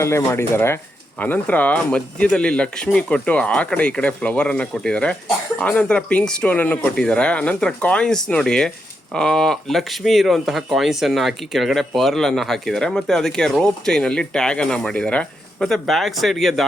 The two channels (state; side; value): normal; both; correlation 0.82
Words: ಅಲ್ಲೇ ಮಾಡಿದ್ದಾರೆ. ಆನಂತರ ಮಧ್ಯದಲ್ಲಿ ಲಕ್ಷ್ಮಿ ಕೊಟ್ಟು ಆ ಕಡೆ ಈ ಕಡೆ ಫ್ಲವರ್ ಅನ್ನ ಕೊಟ್ಟಿದ್ದಾರೆ. ಆನಂತರ ಪಿಂಕ್ ಸ್ಟೋನ್ ಅನ್ನು ಕೊಟ್ಟಿದ್ದಾರೆ. ಆನಂತರ ಕಾಯಿನ್ಸ್ ನೋಡಿ, ಲಕ್ಷ್ಮಿ ಇರುವಂತಹ ಕಾಯಿನ್ಸ್ ಅನ್ನು ಹಾಕಿ ಕೆಳಗಡೆ ಪರ್ಲ್ ಅನ್ನ ಹಾಕಿದ್ದಾರೆ. ಮತ್ತೆ ಅದಕ್ಕೆ ರೋಪ್ ಚೈನ್ ಅಲ್ಲಿ ಟ್ಯಾಗ್ ಅನ್ನ ಮಾಡಿದ್ದಾರೆ. ಮತ್ತೆ ಬ್ಯಾಕ್ ಸೈಡ್ಗೆ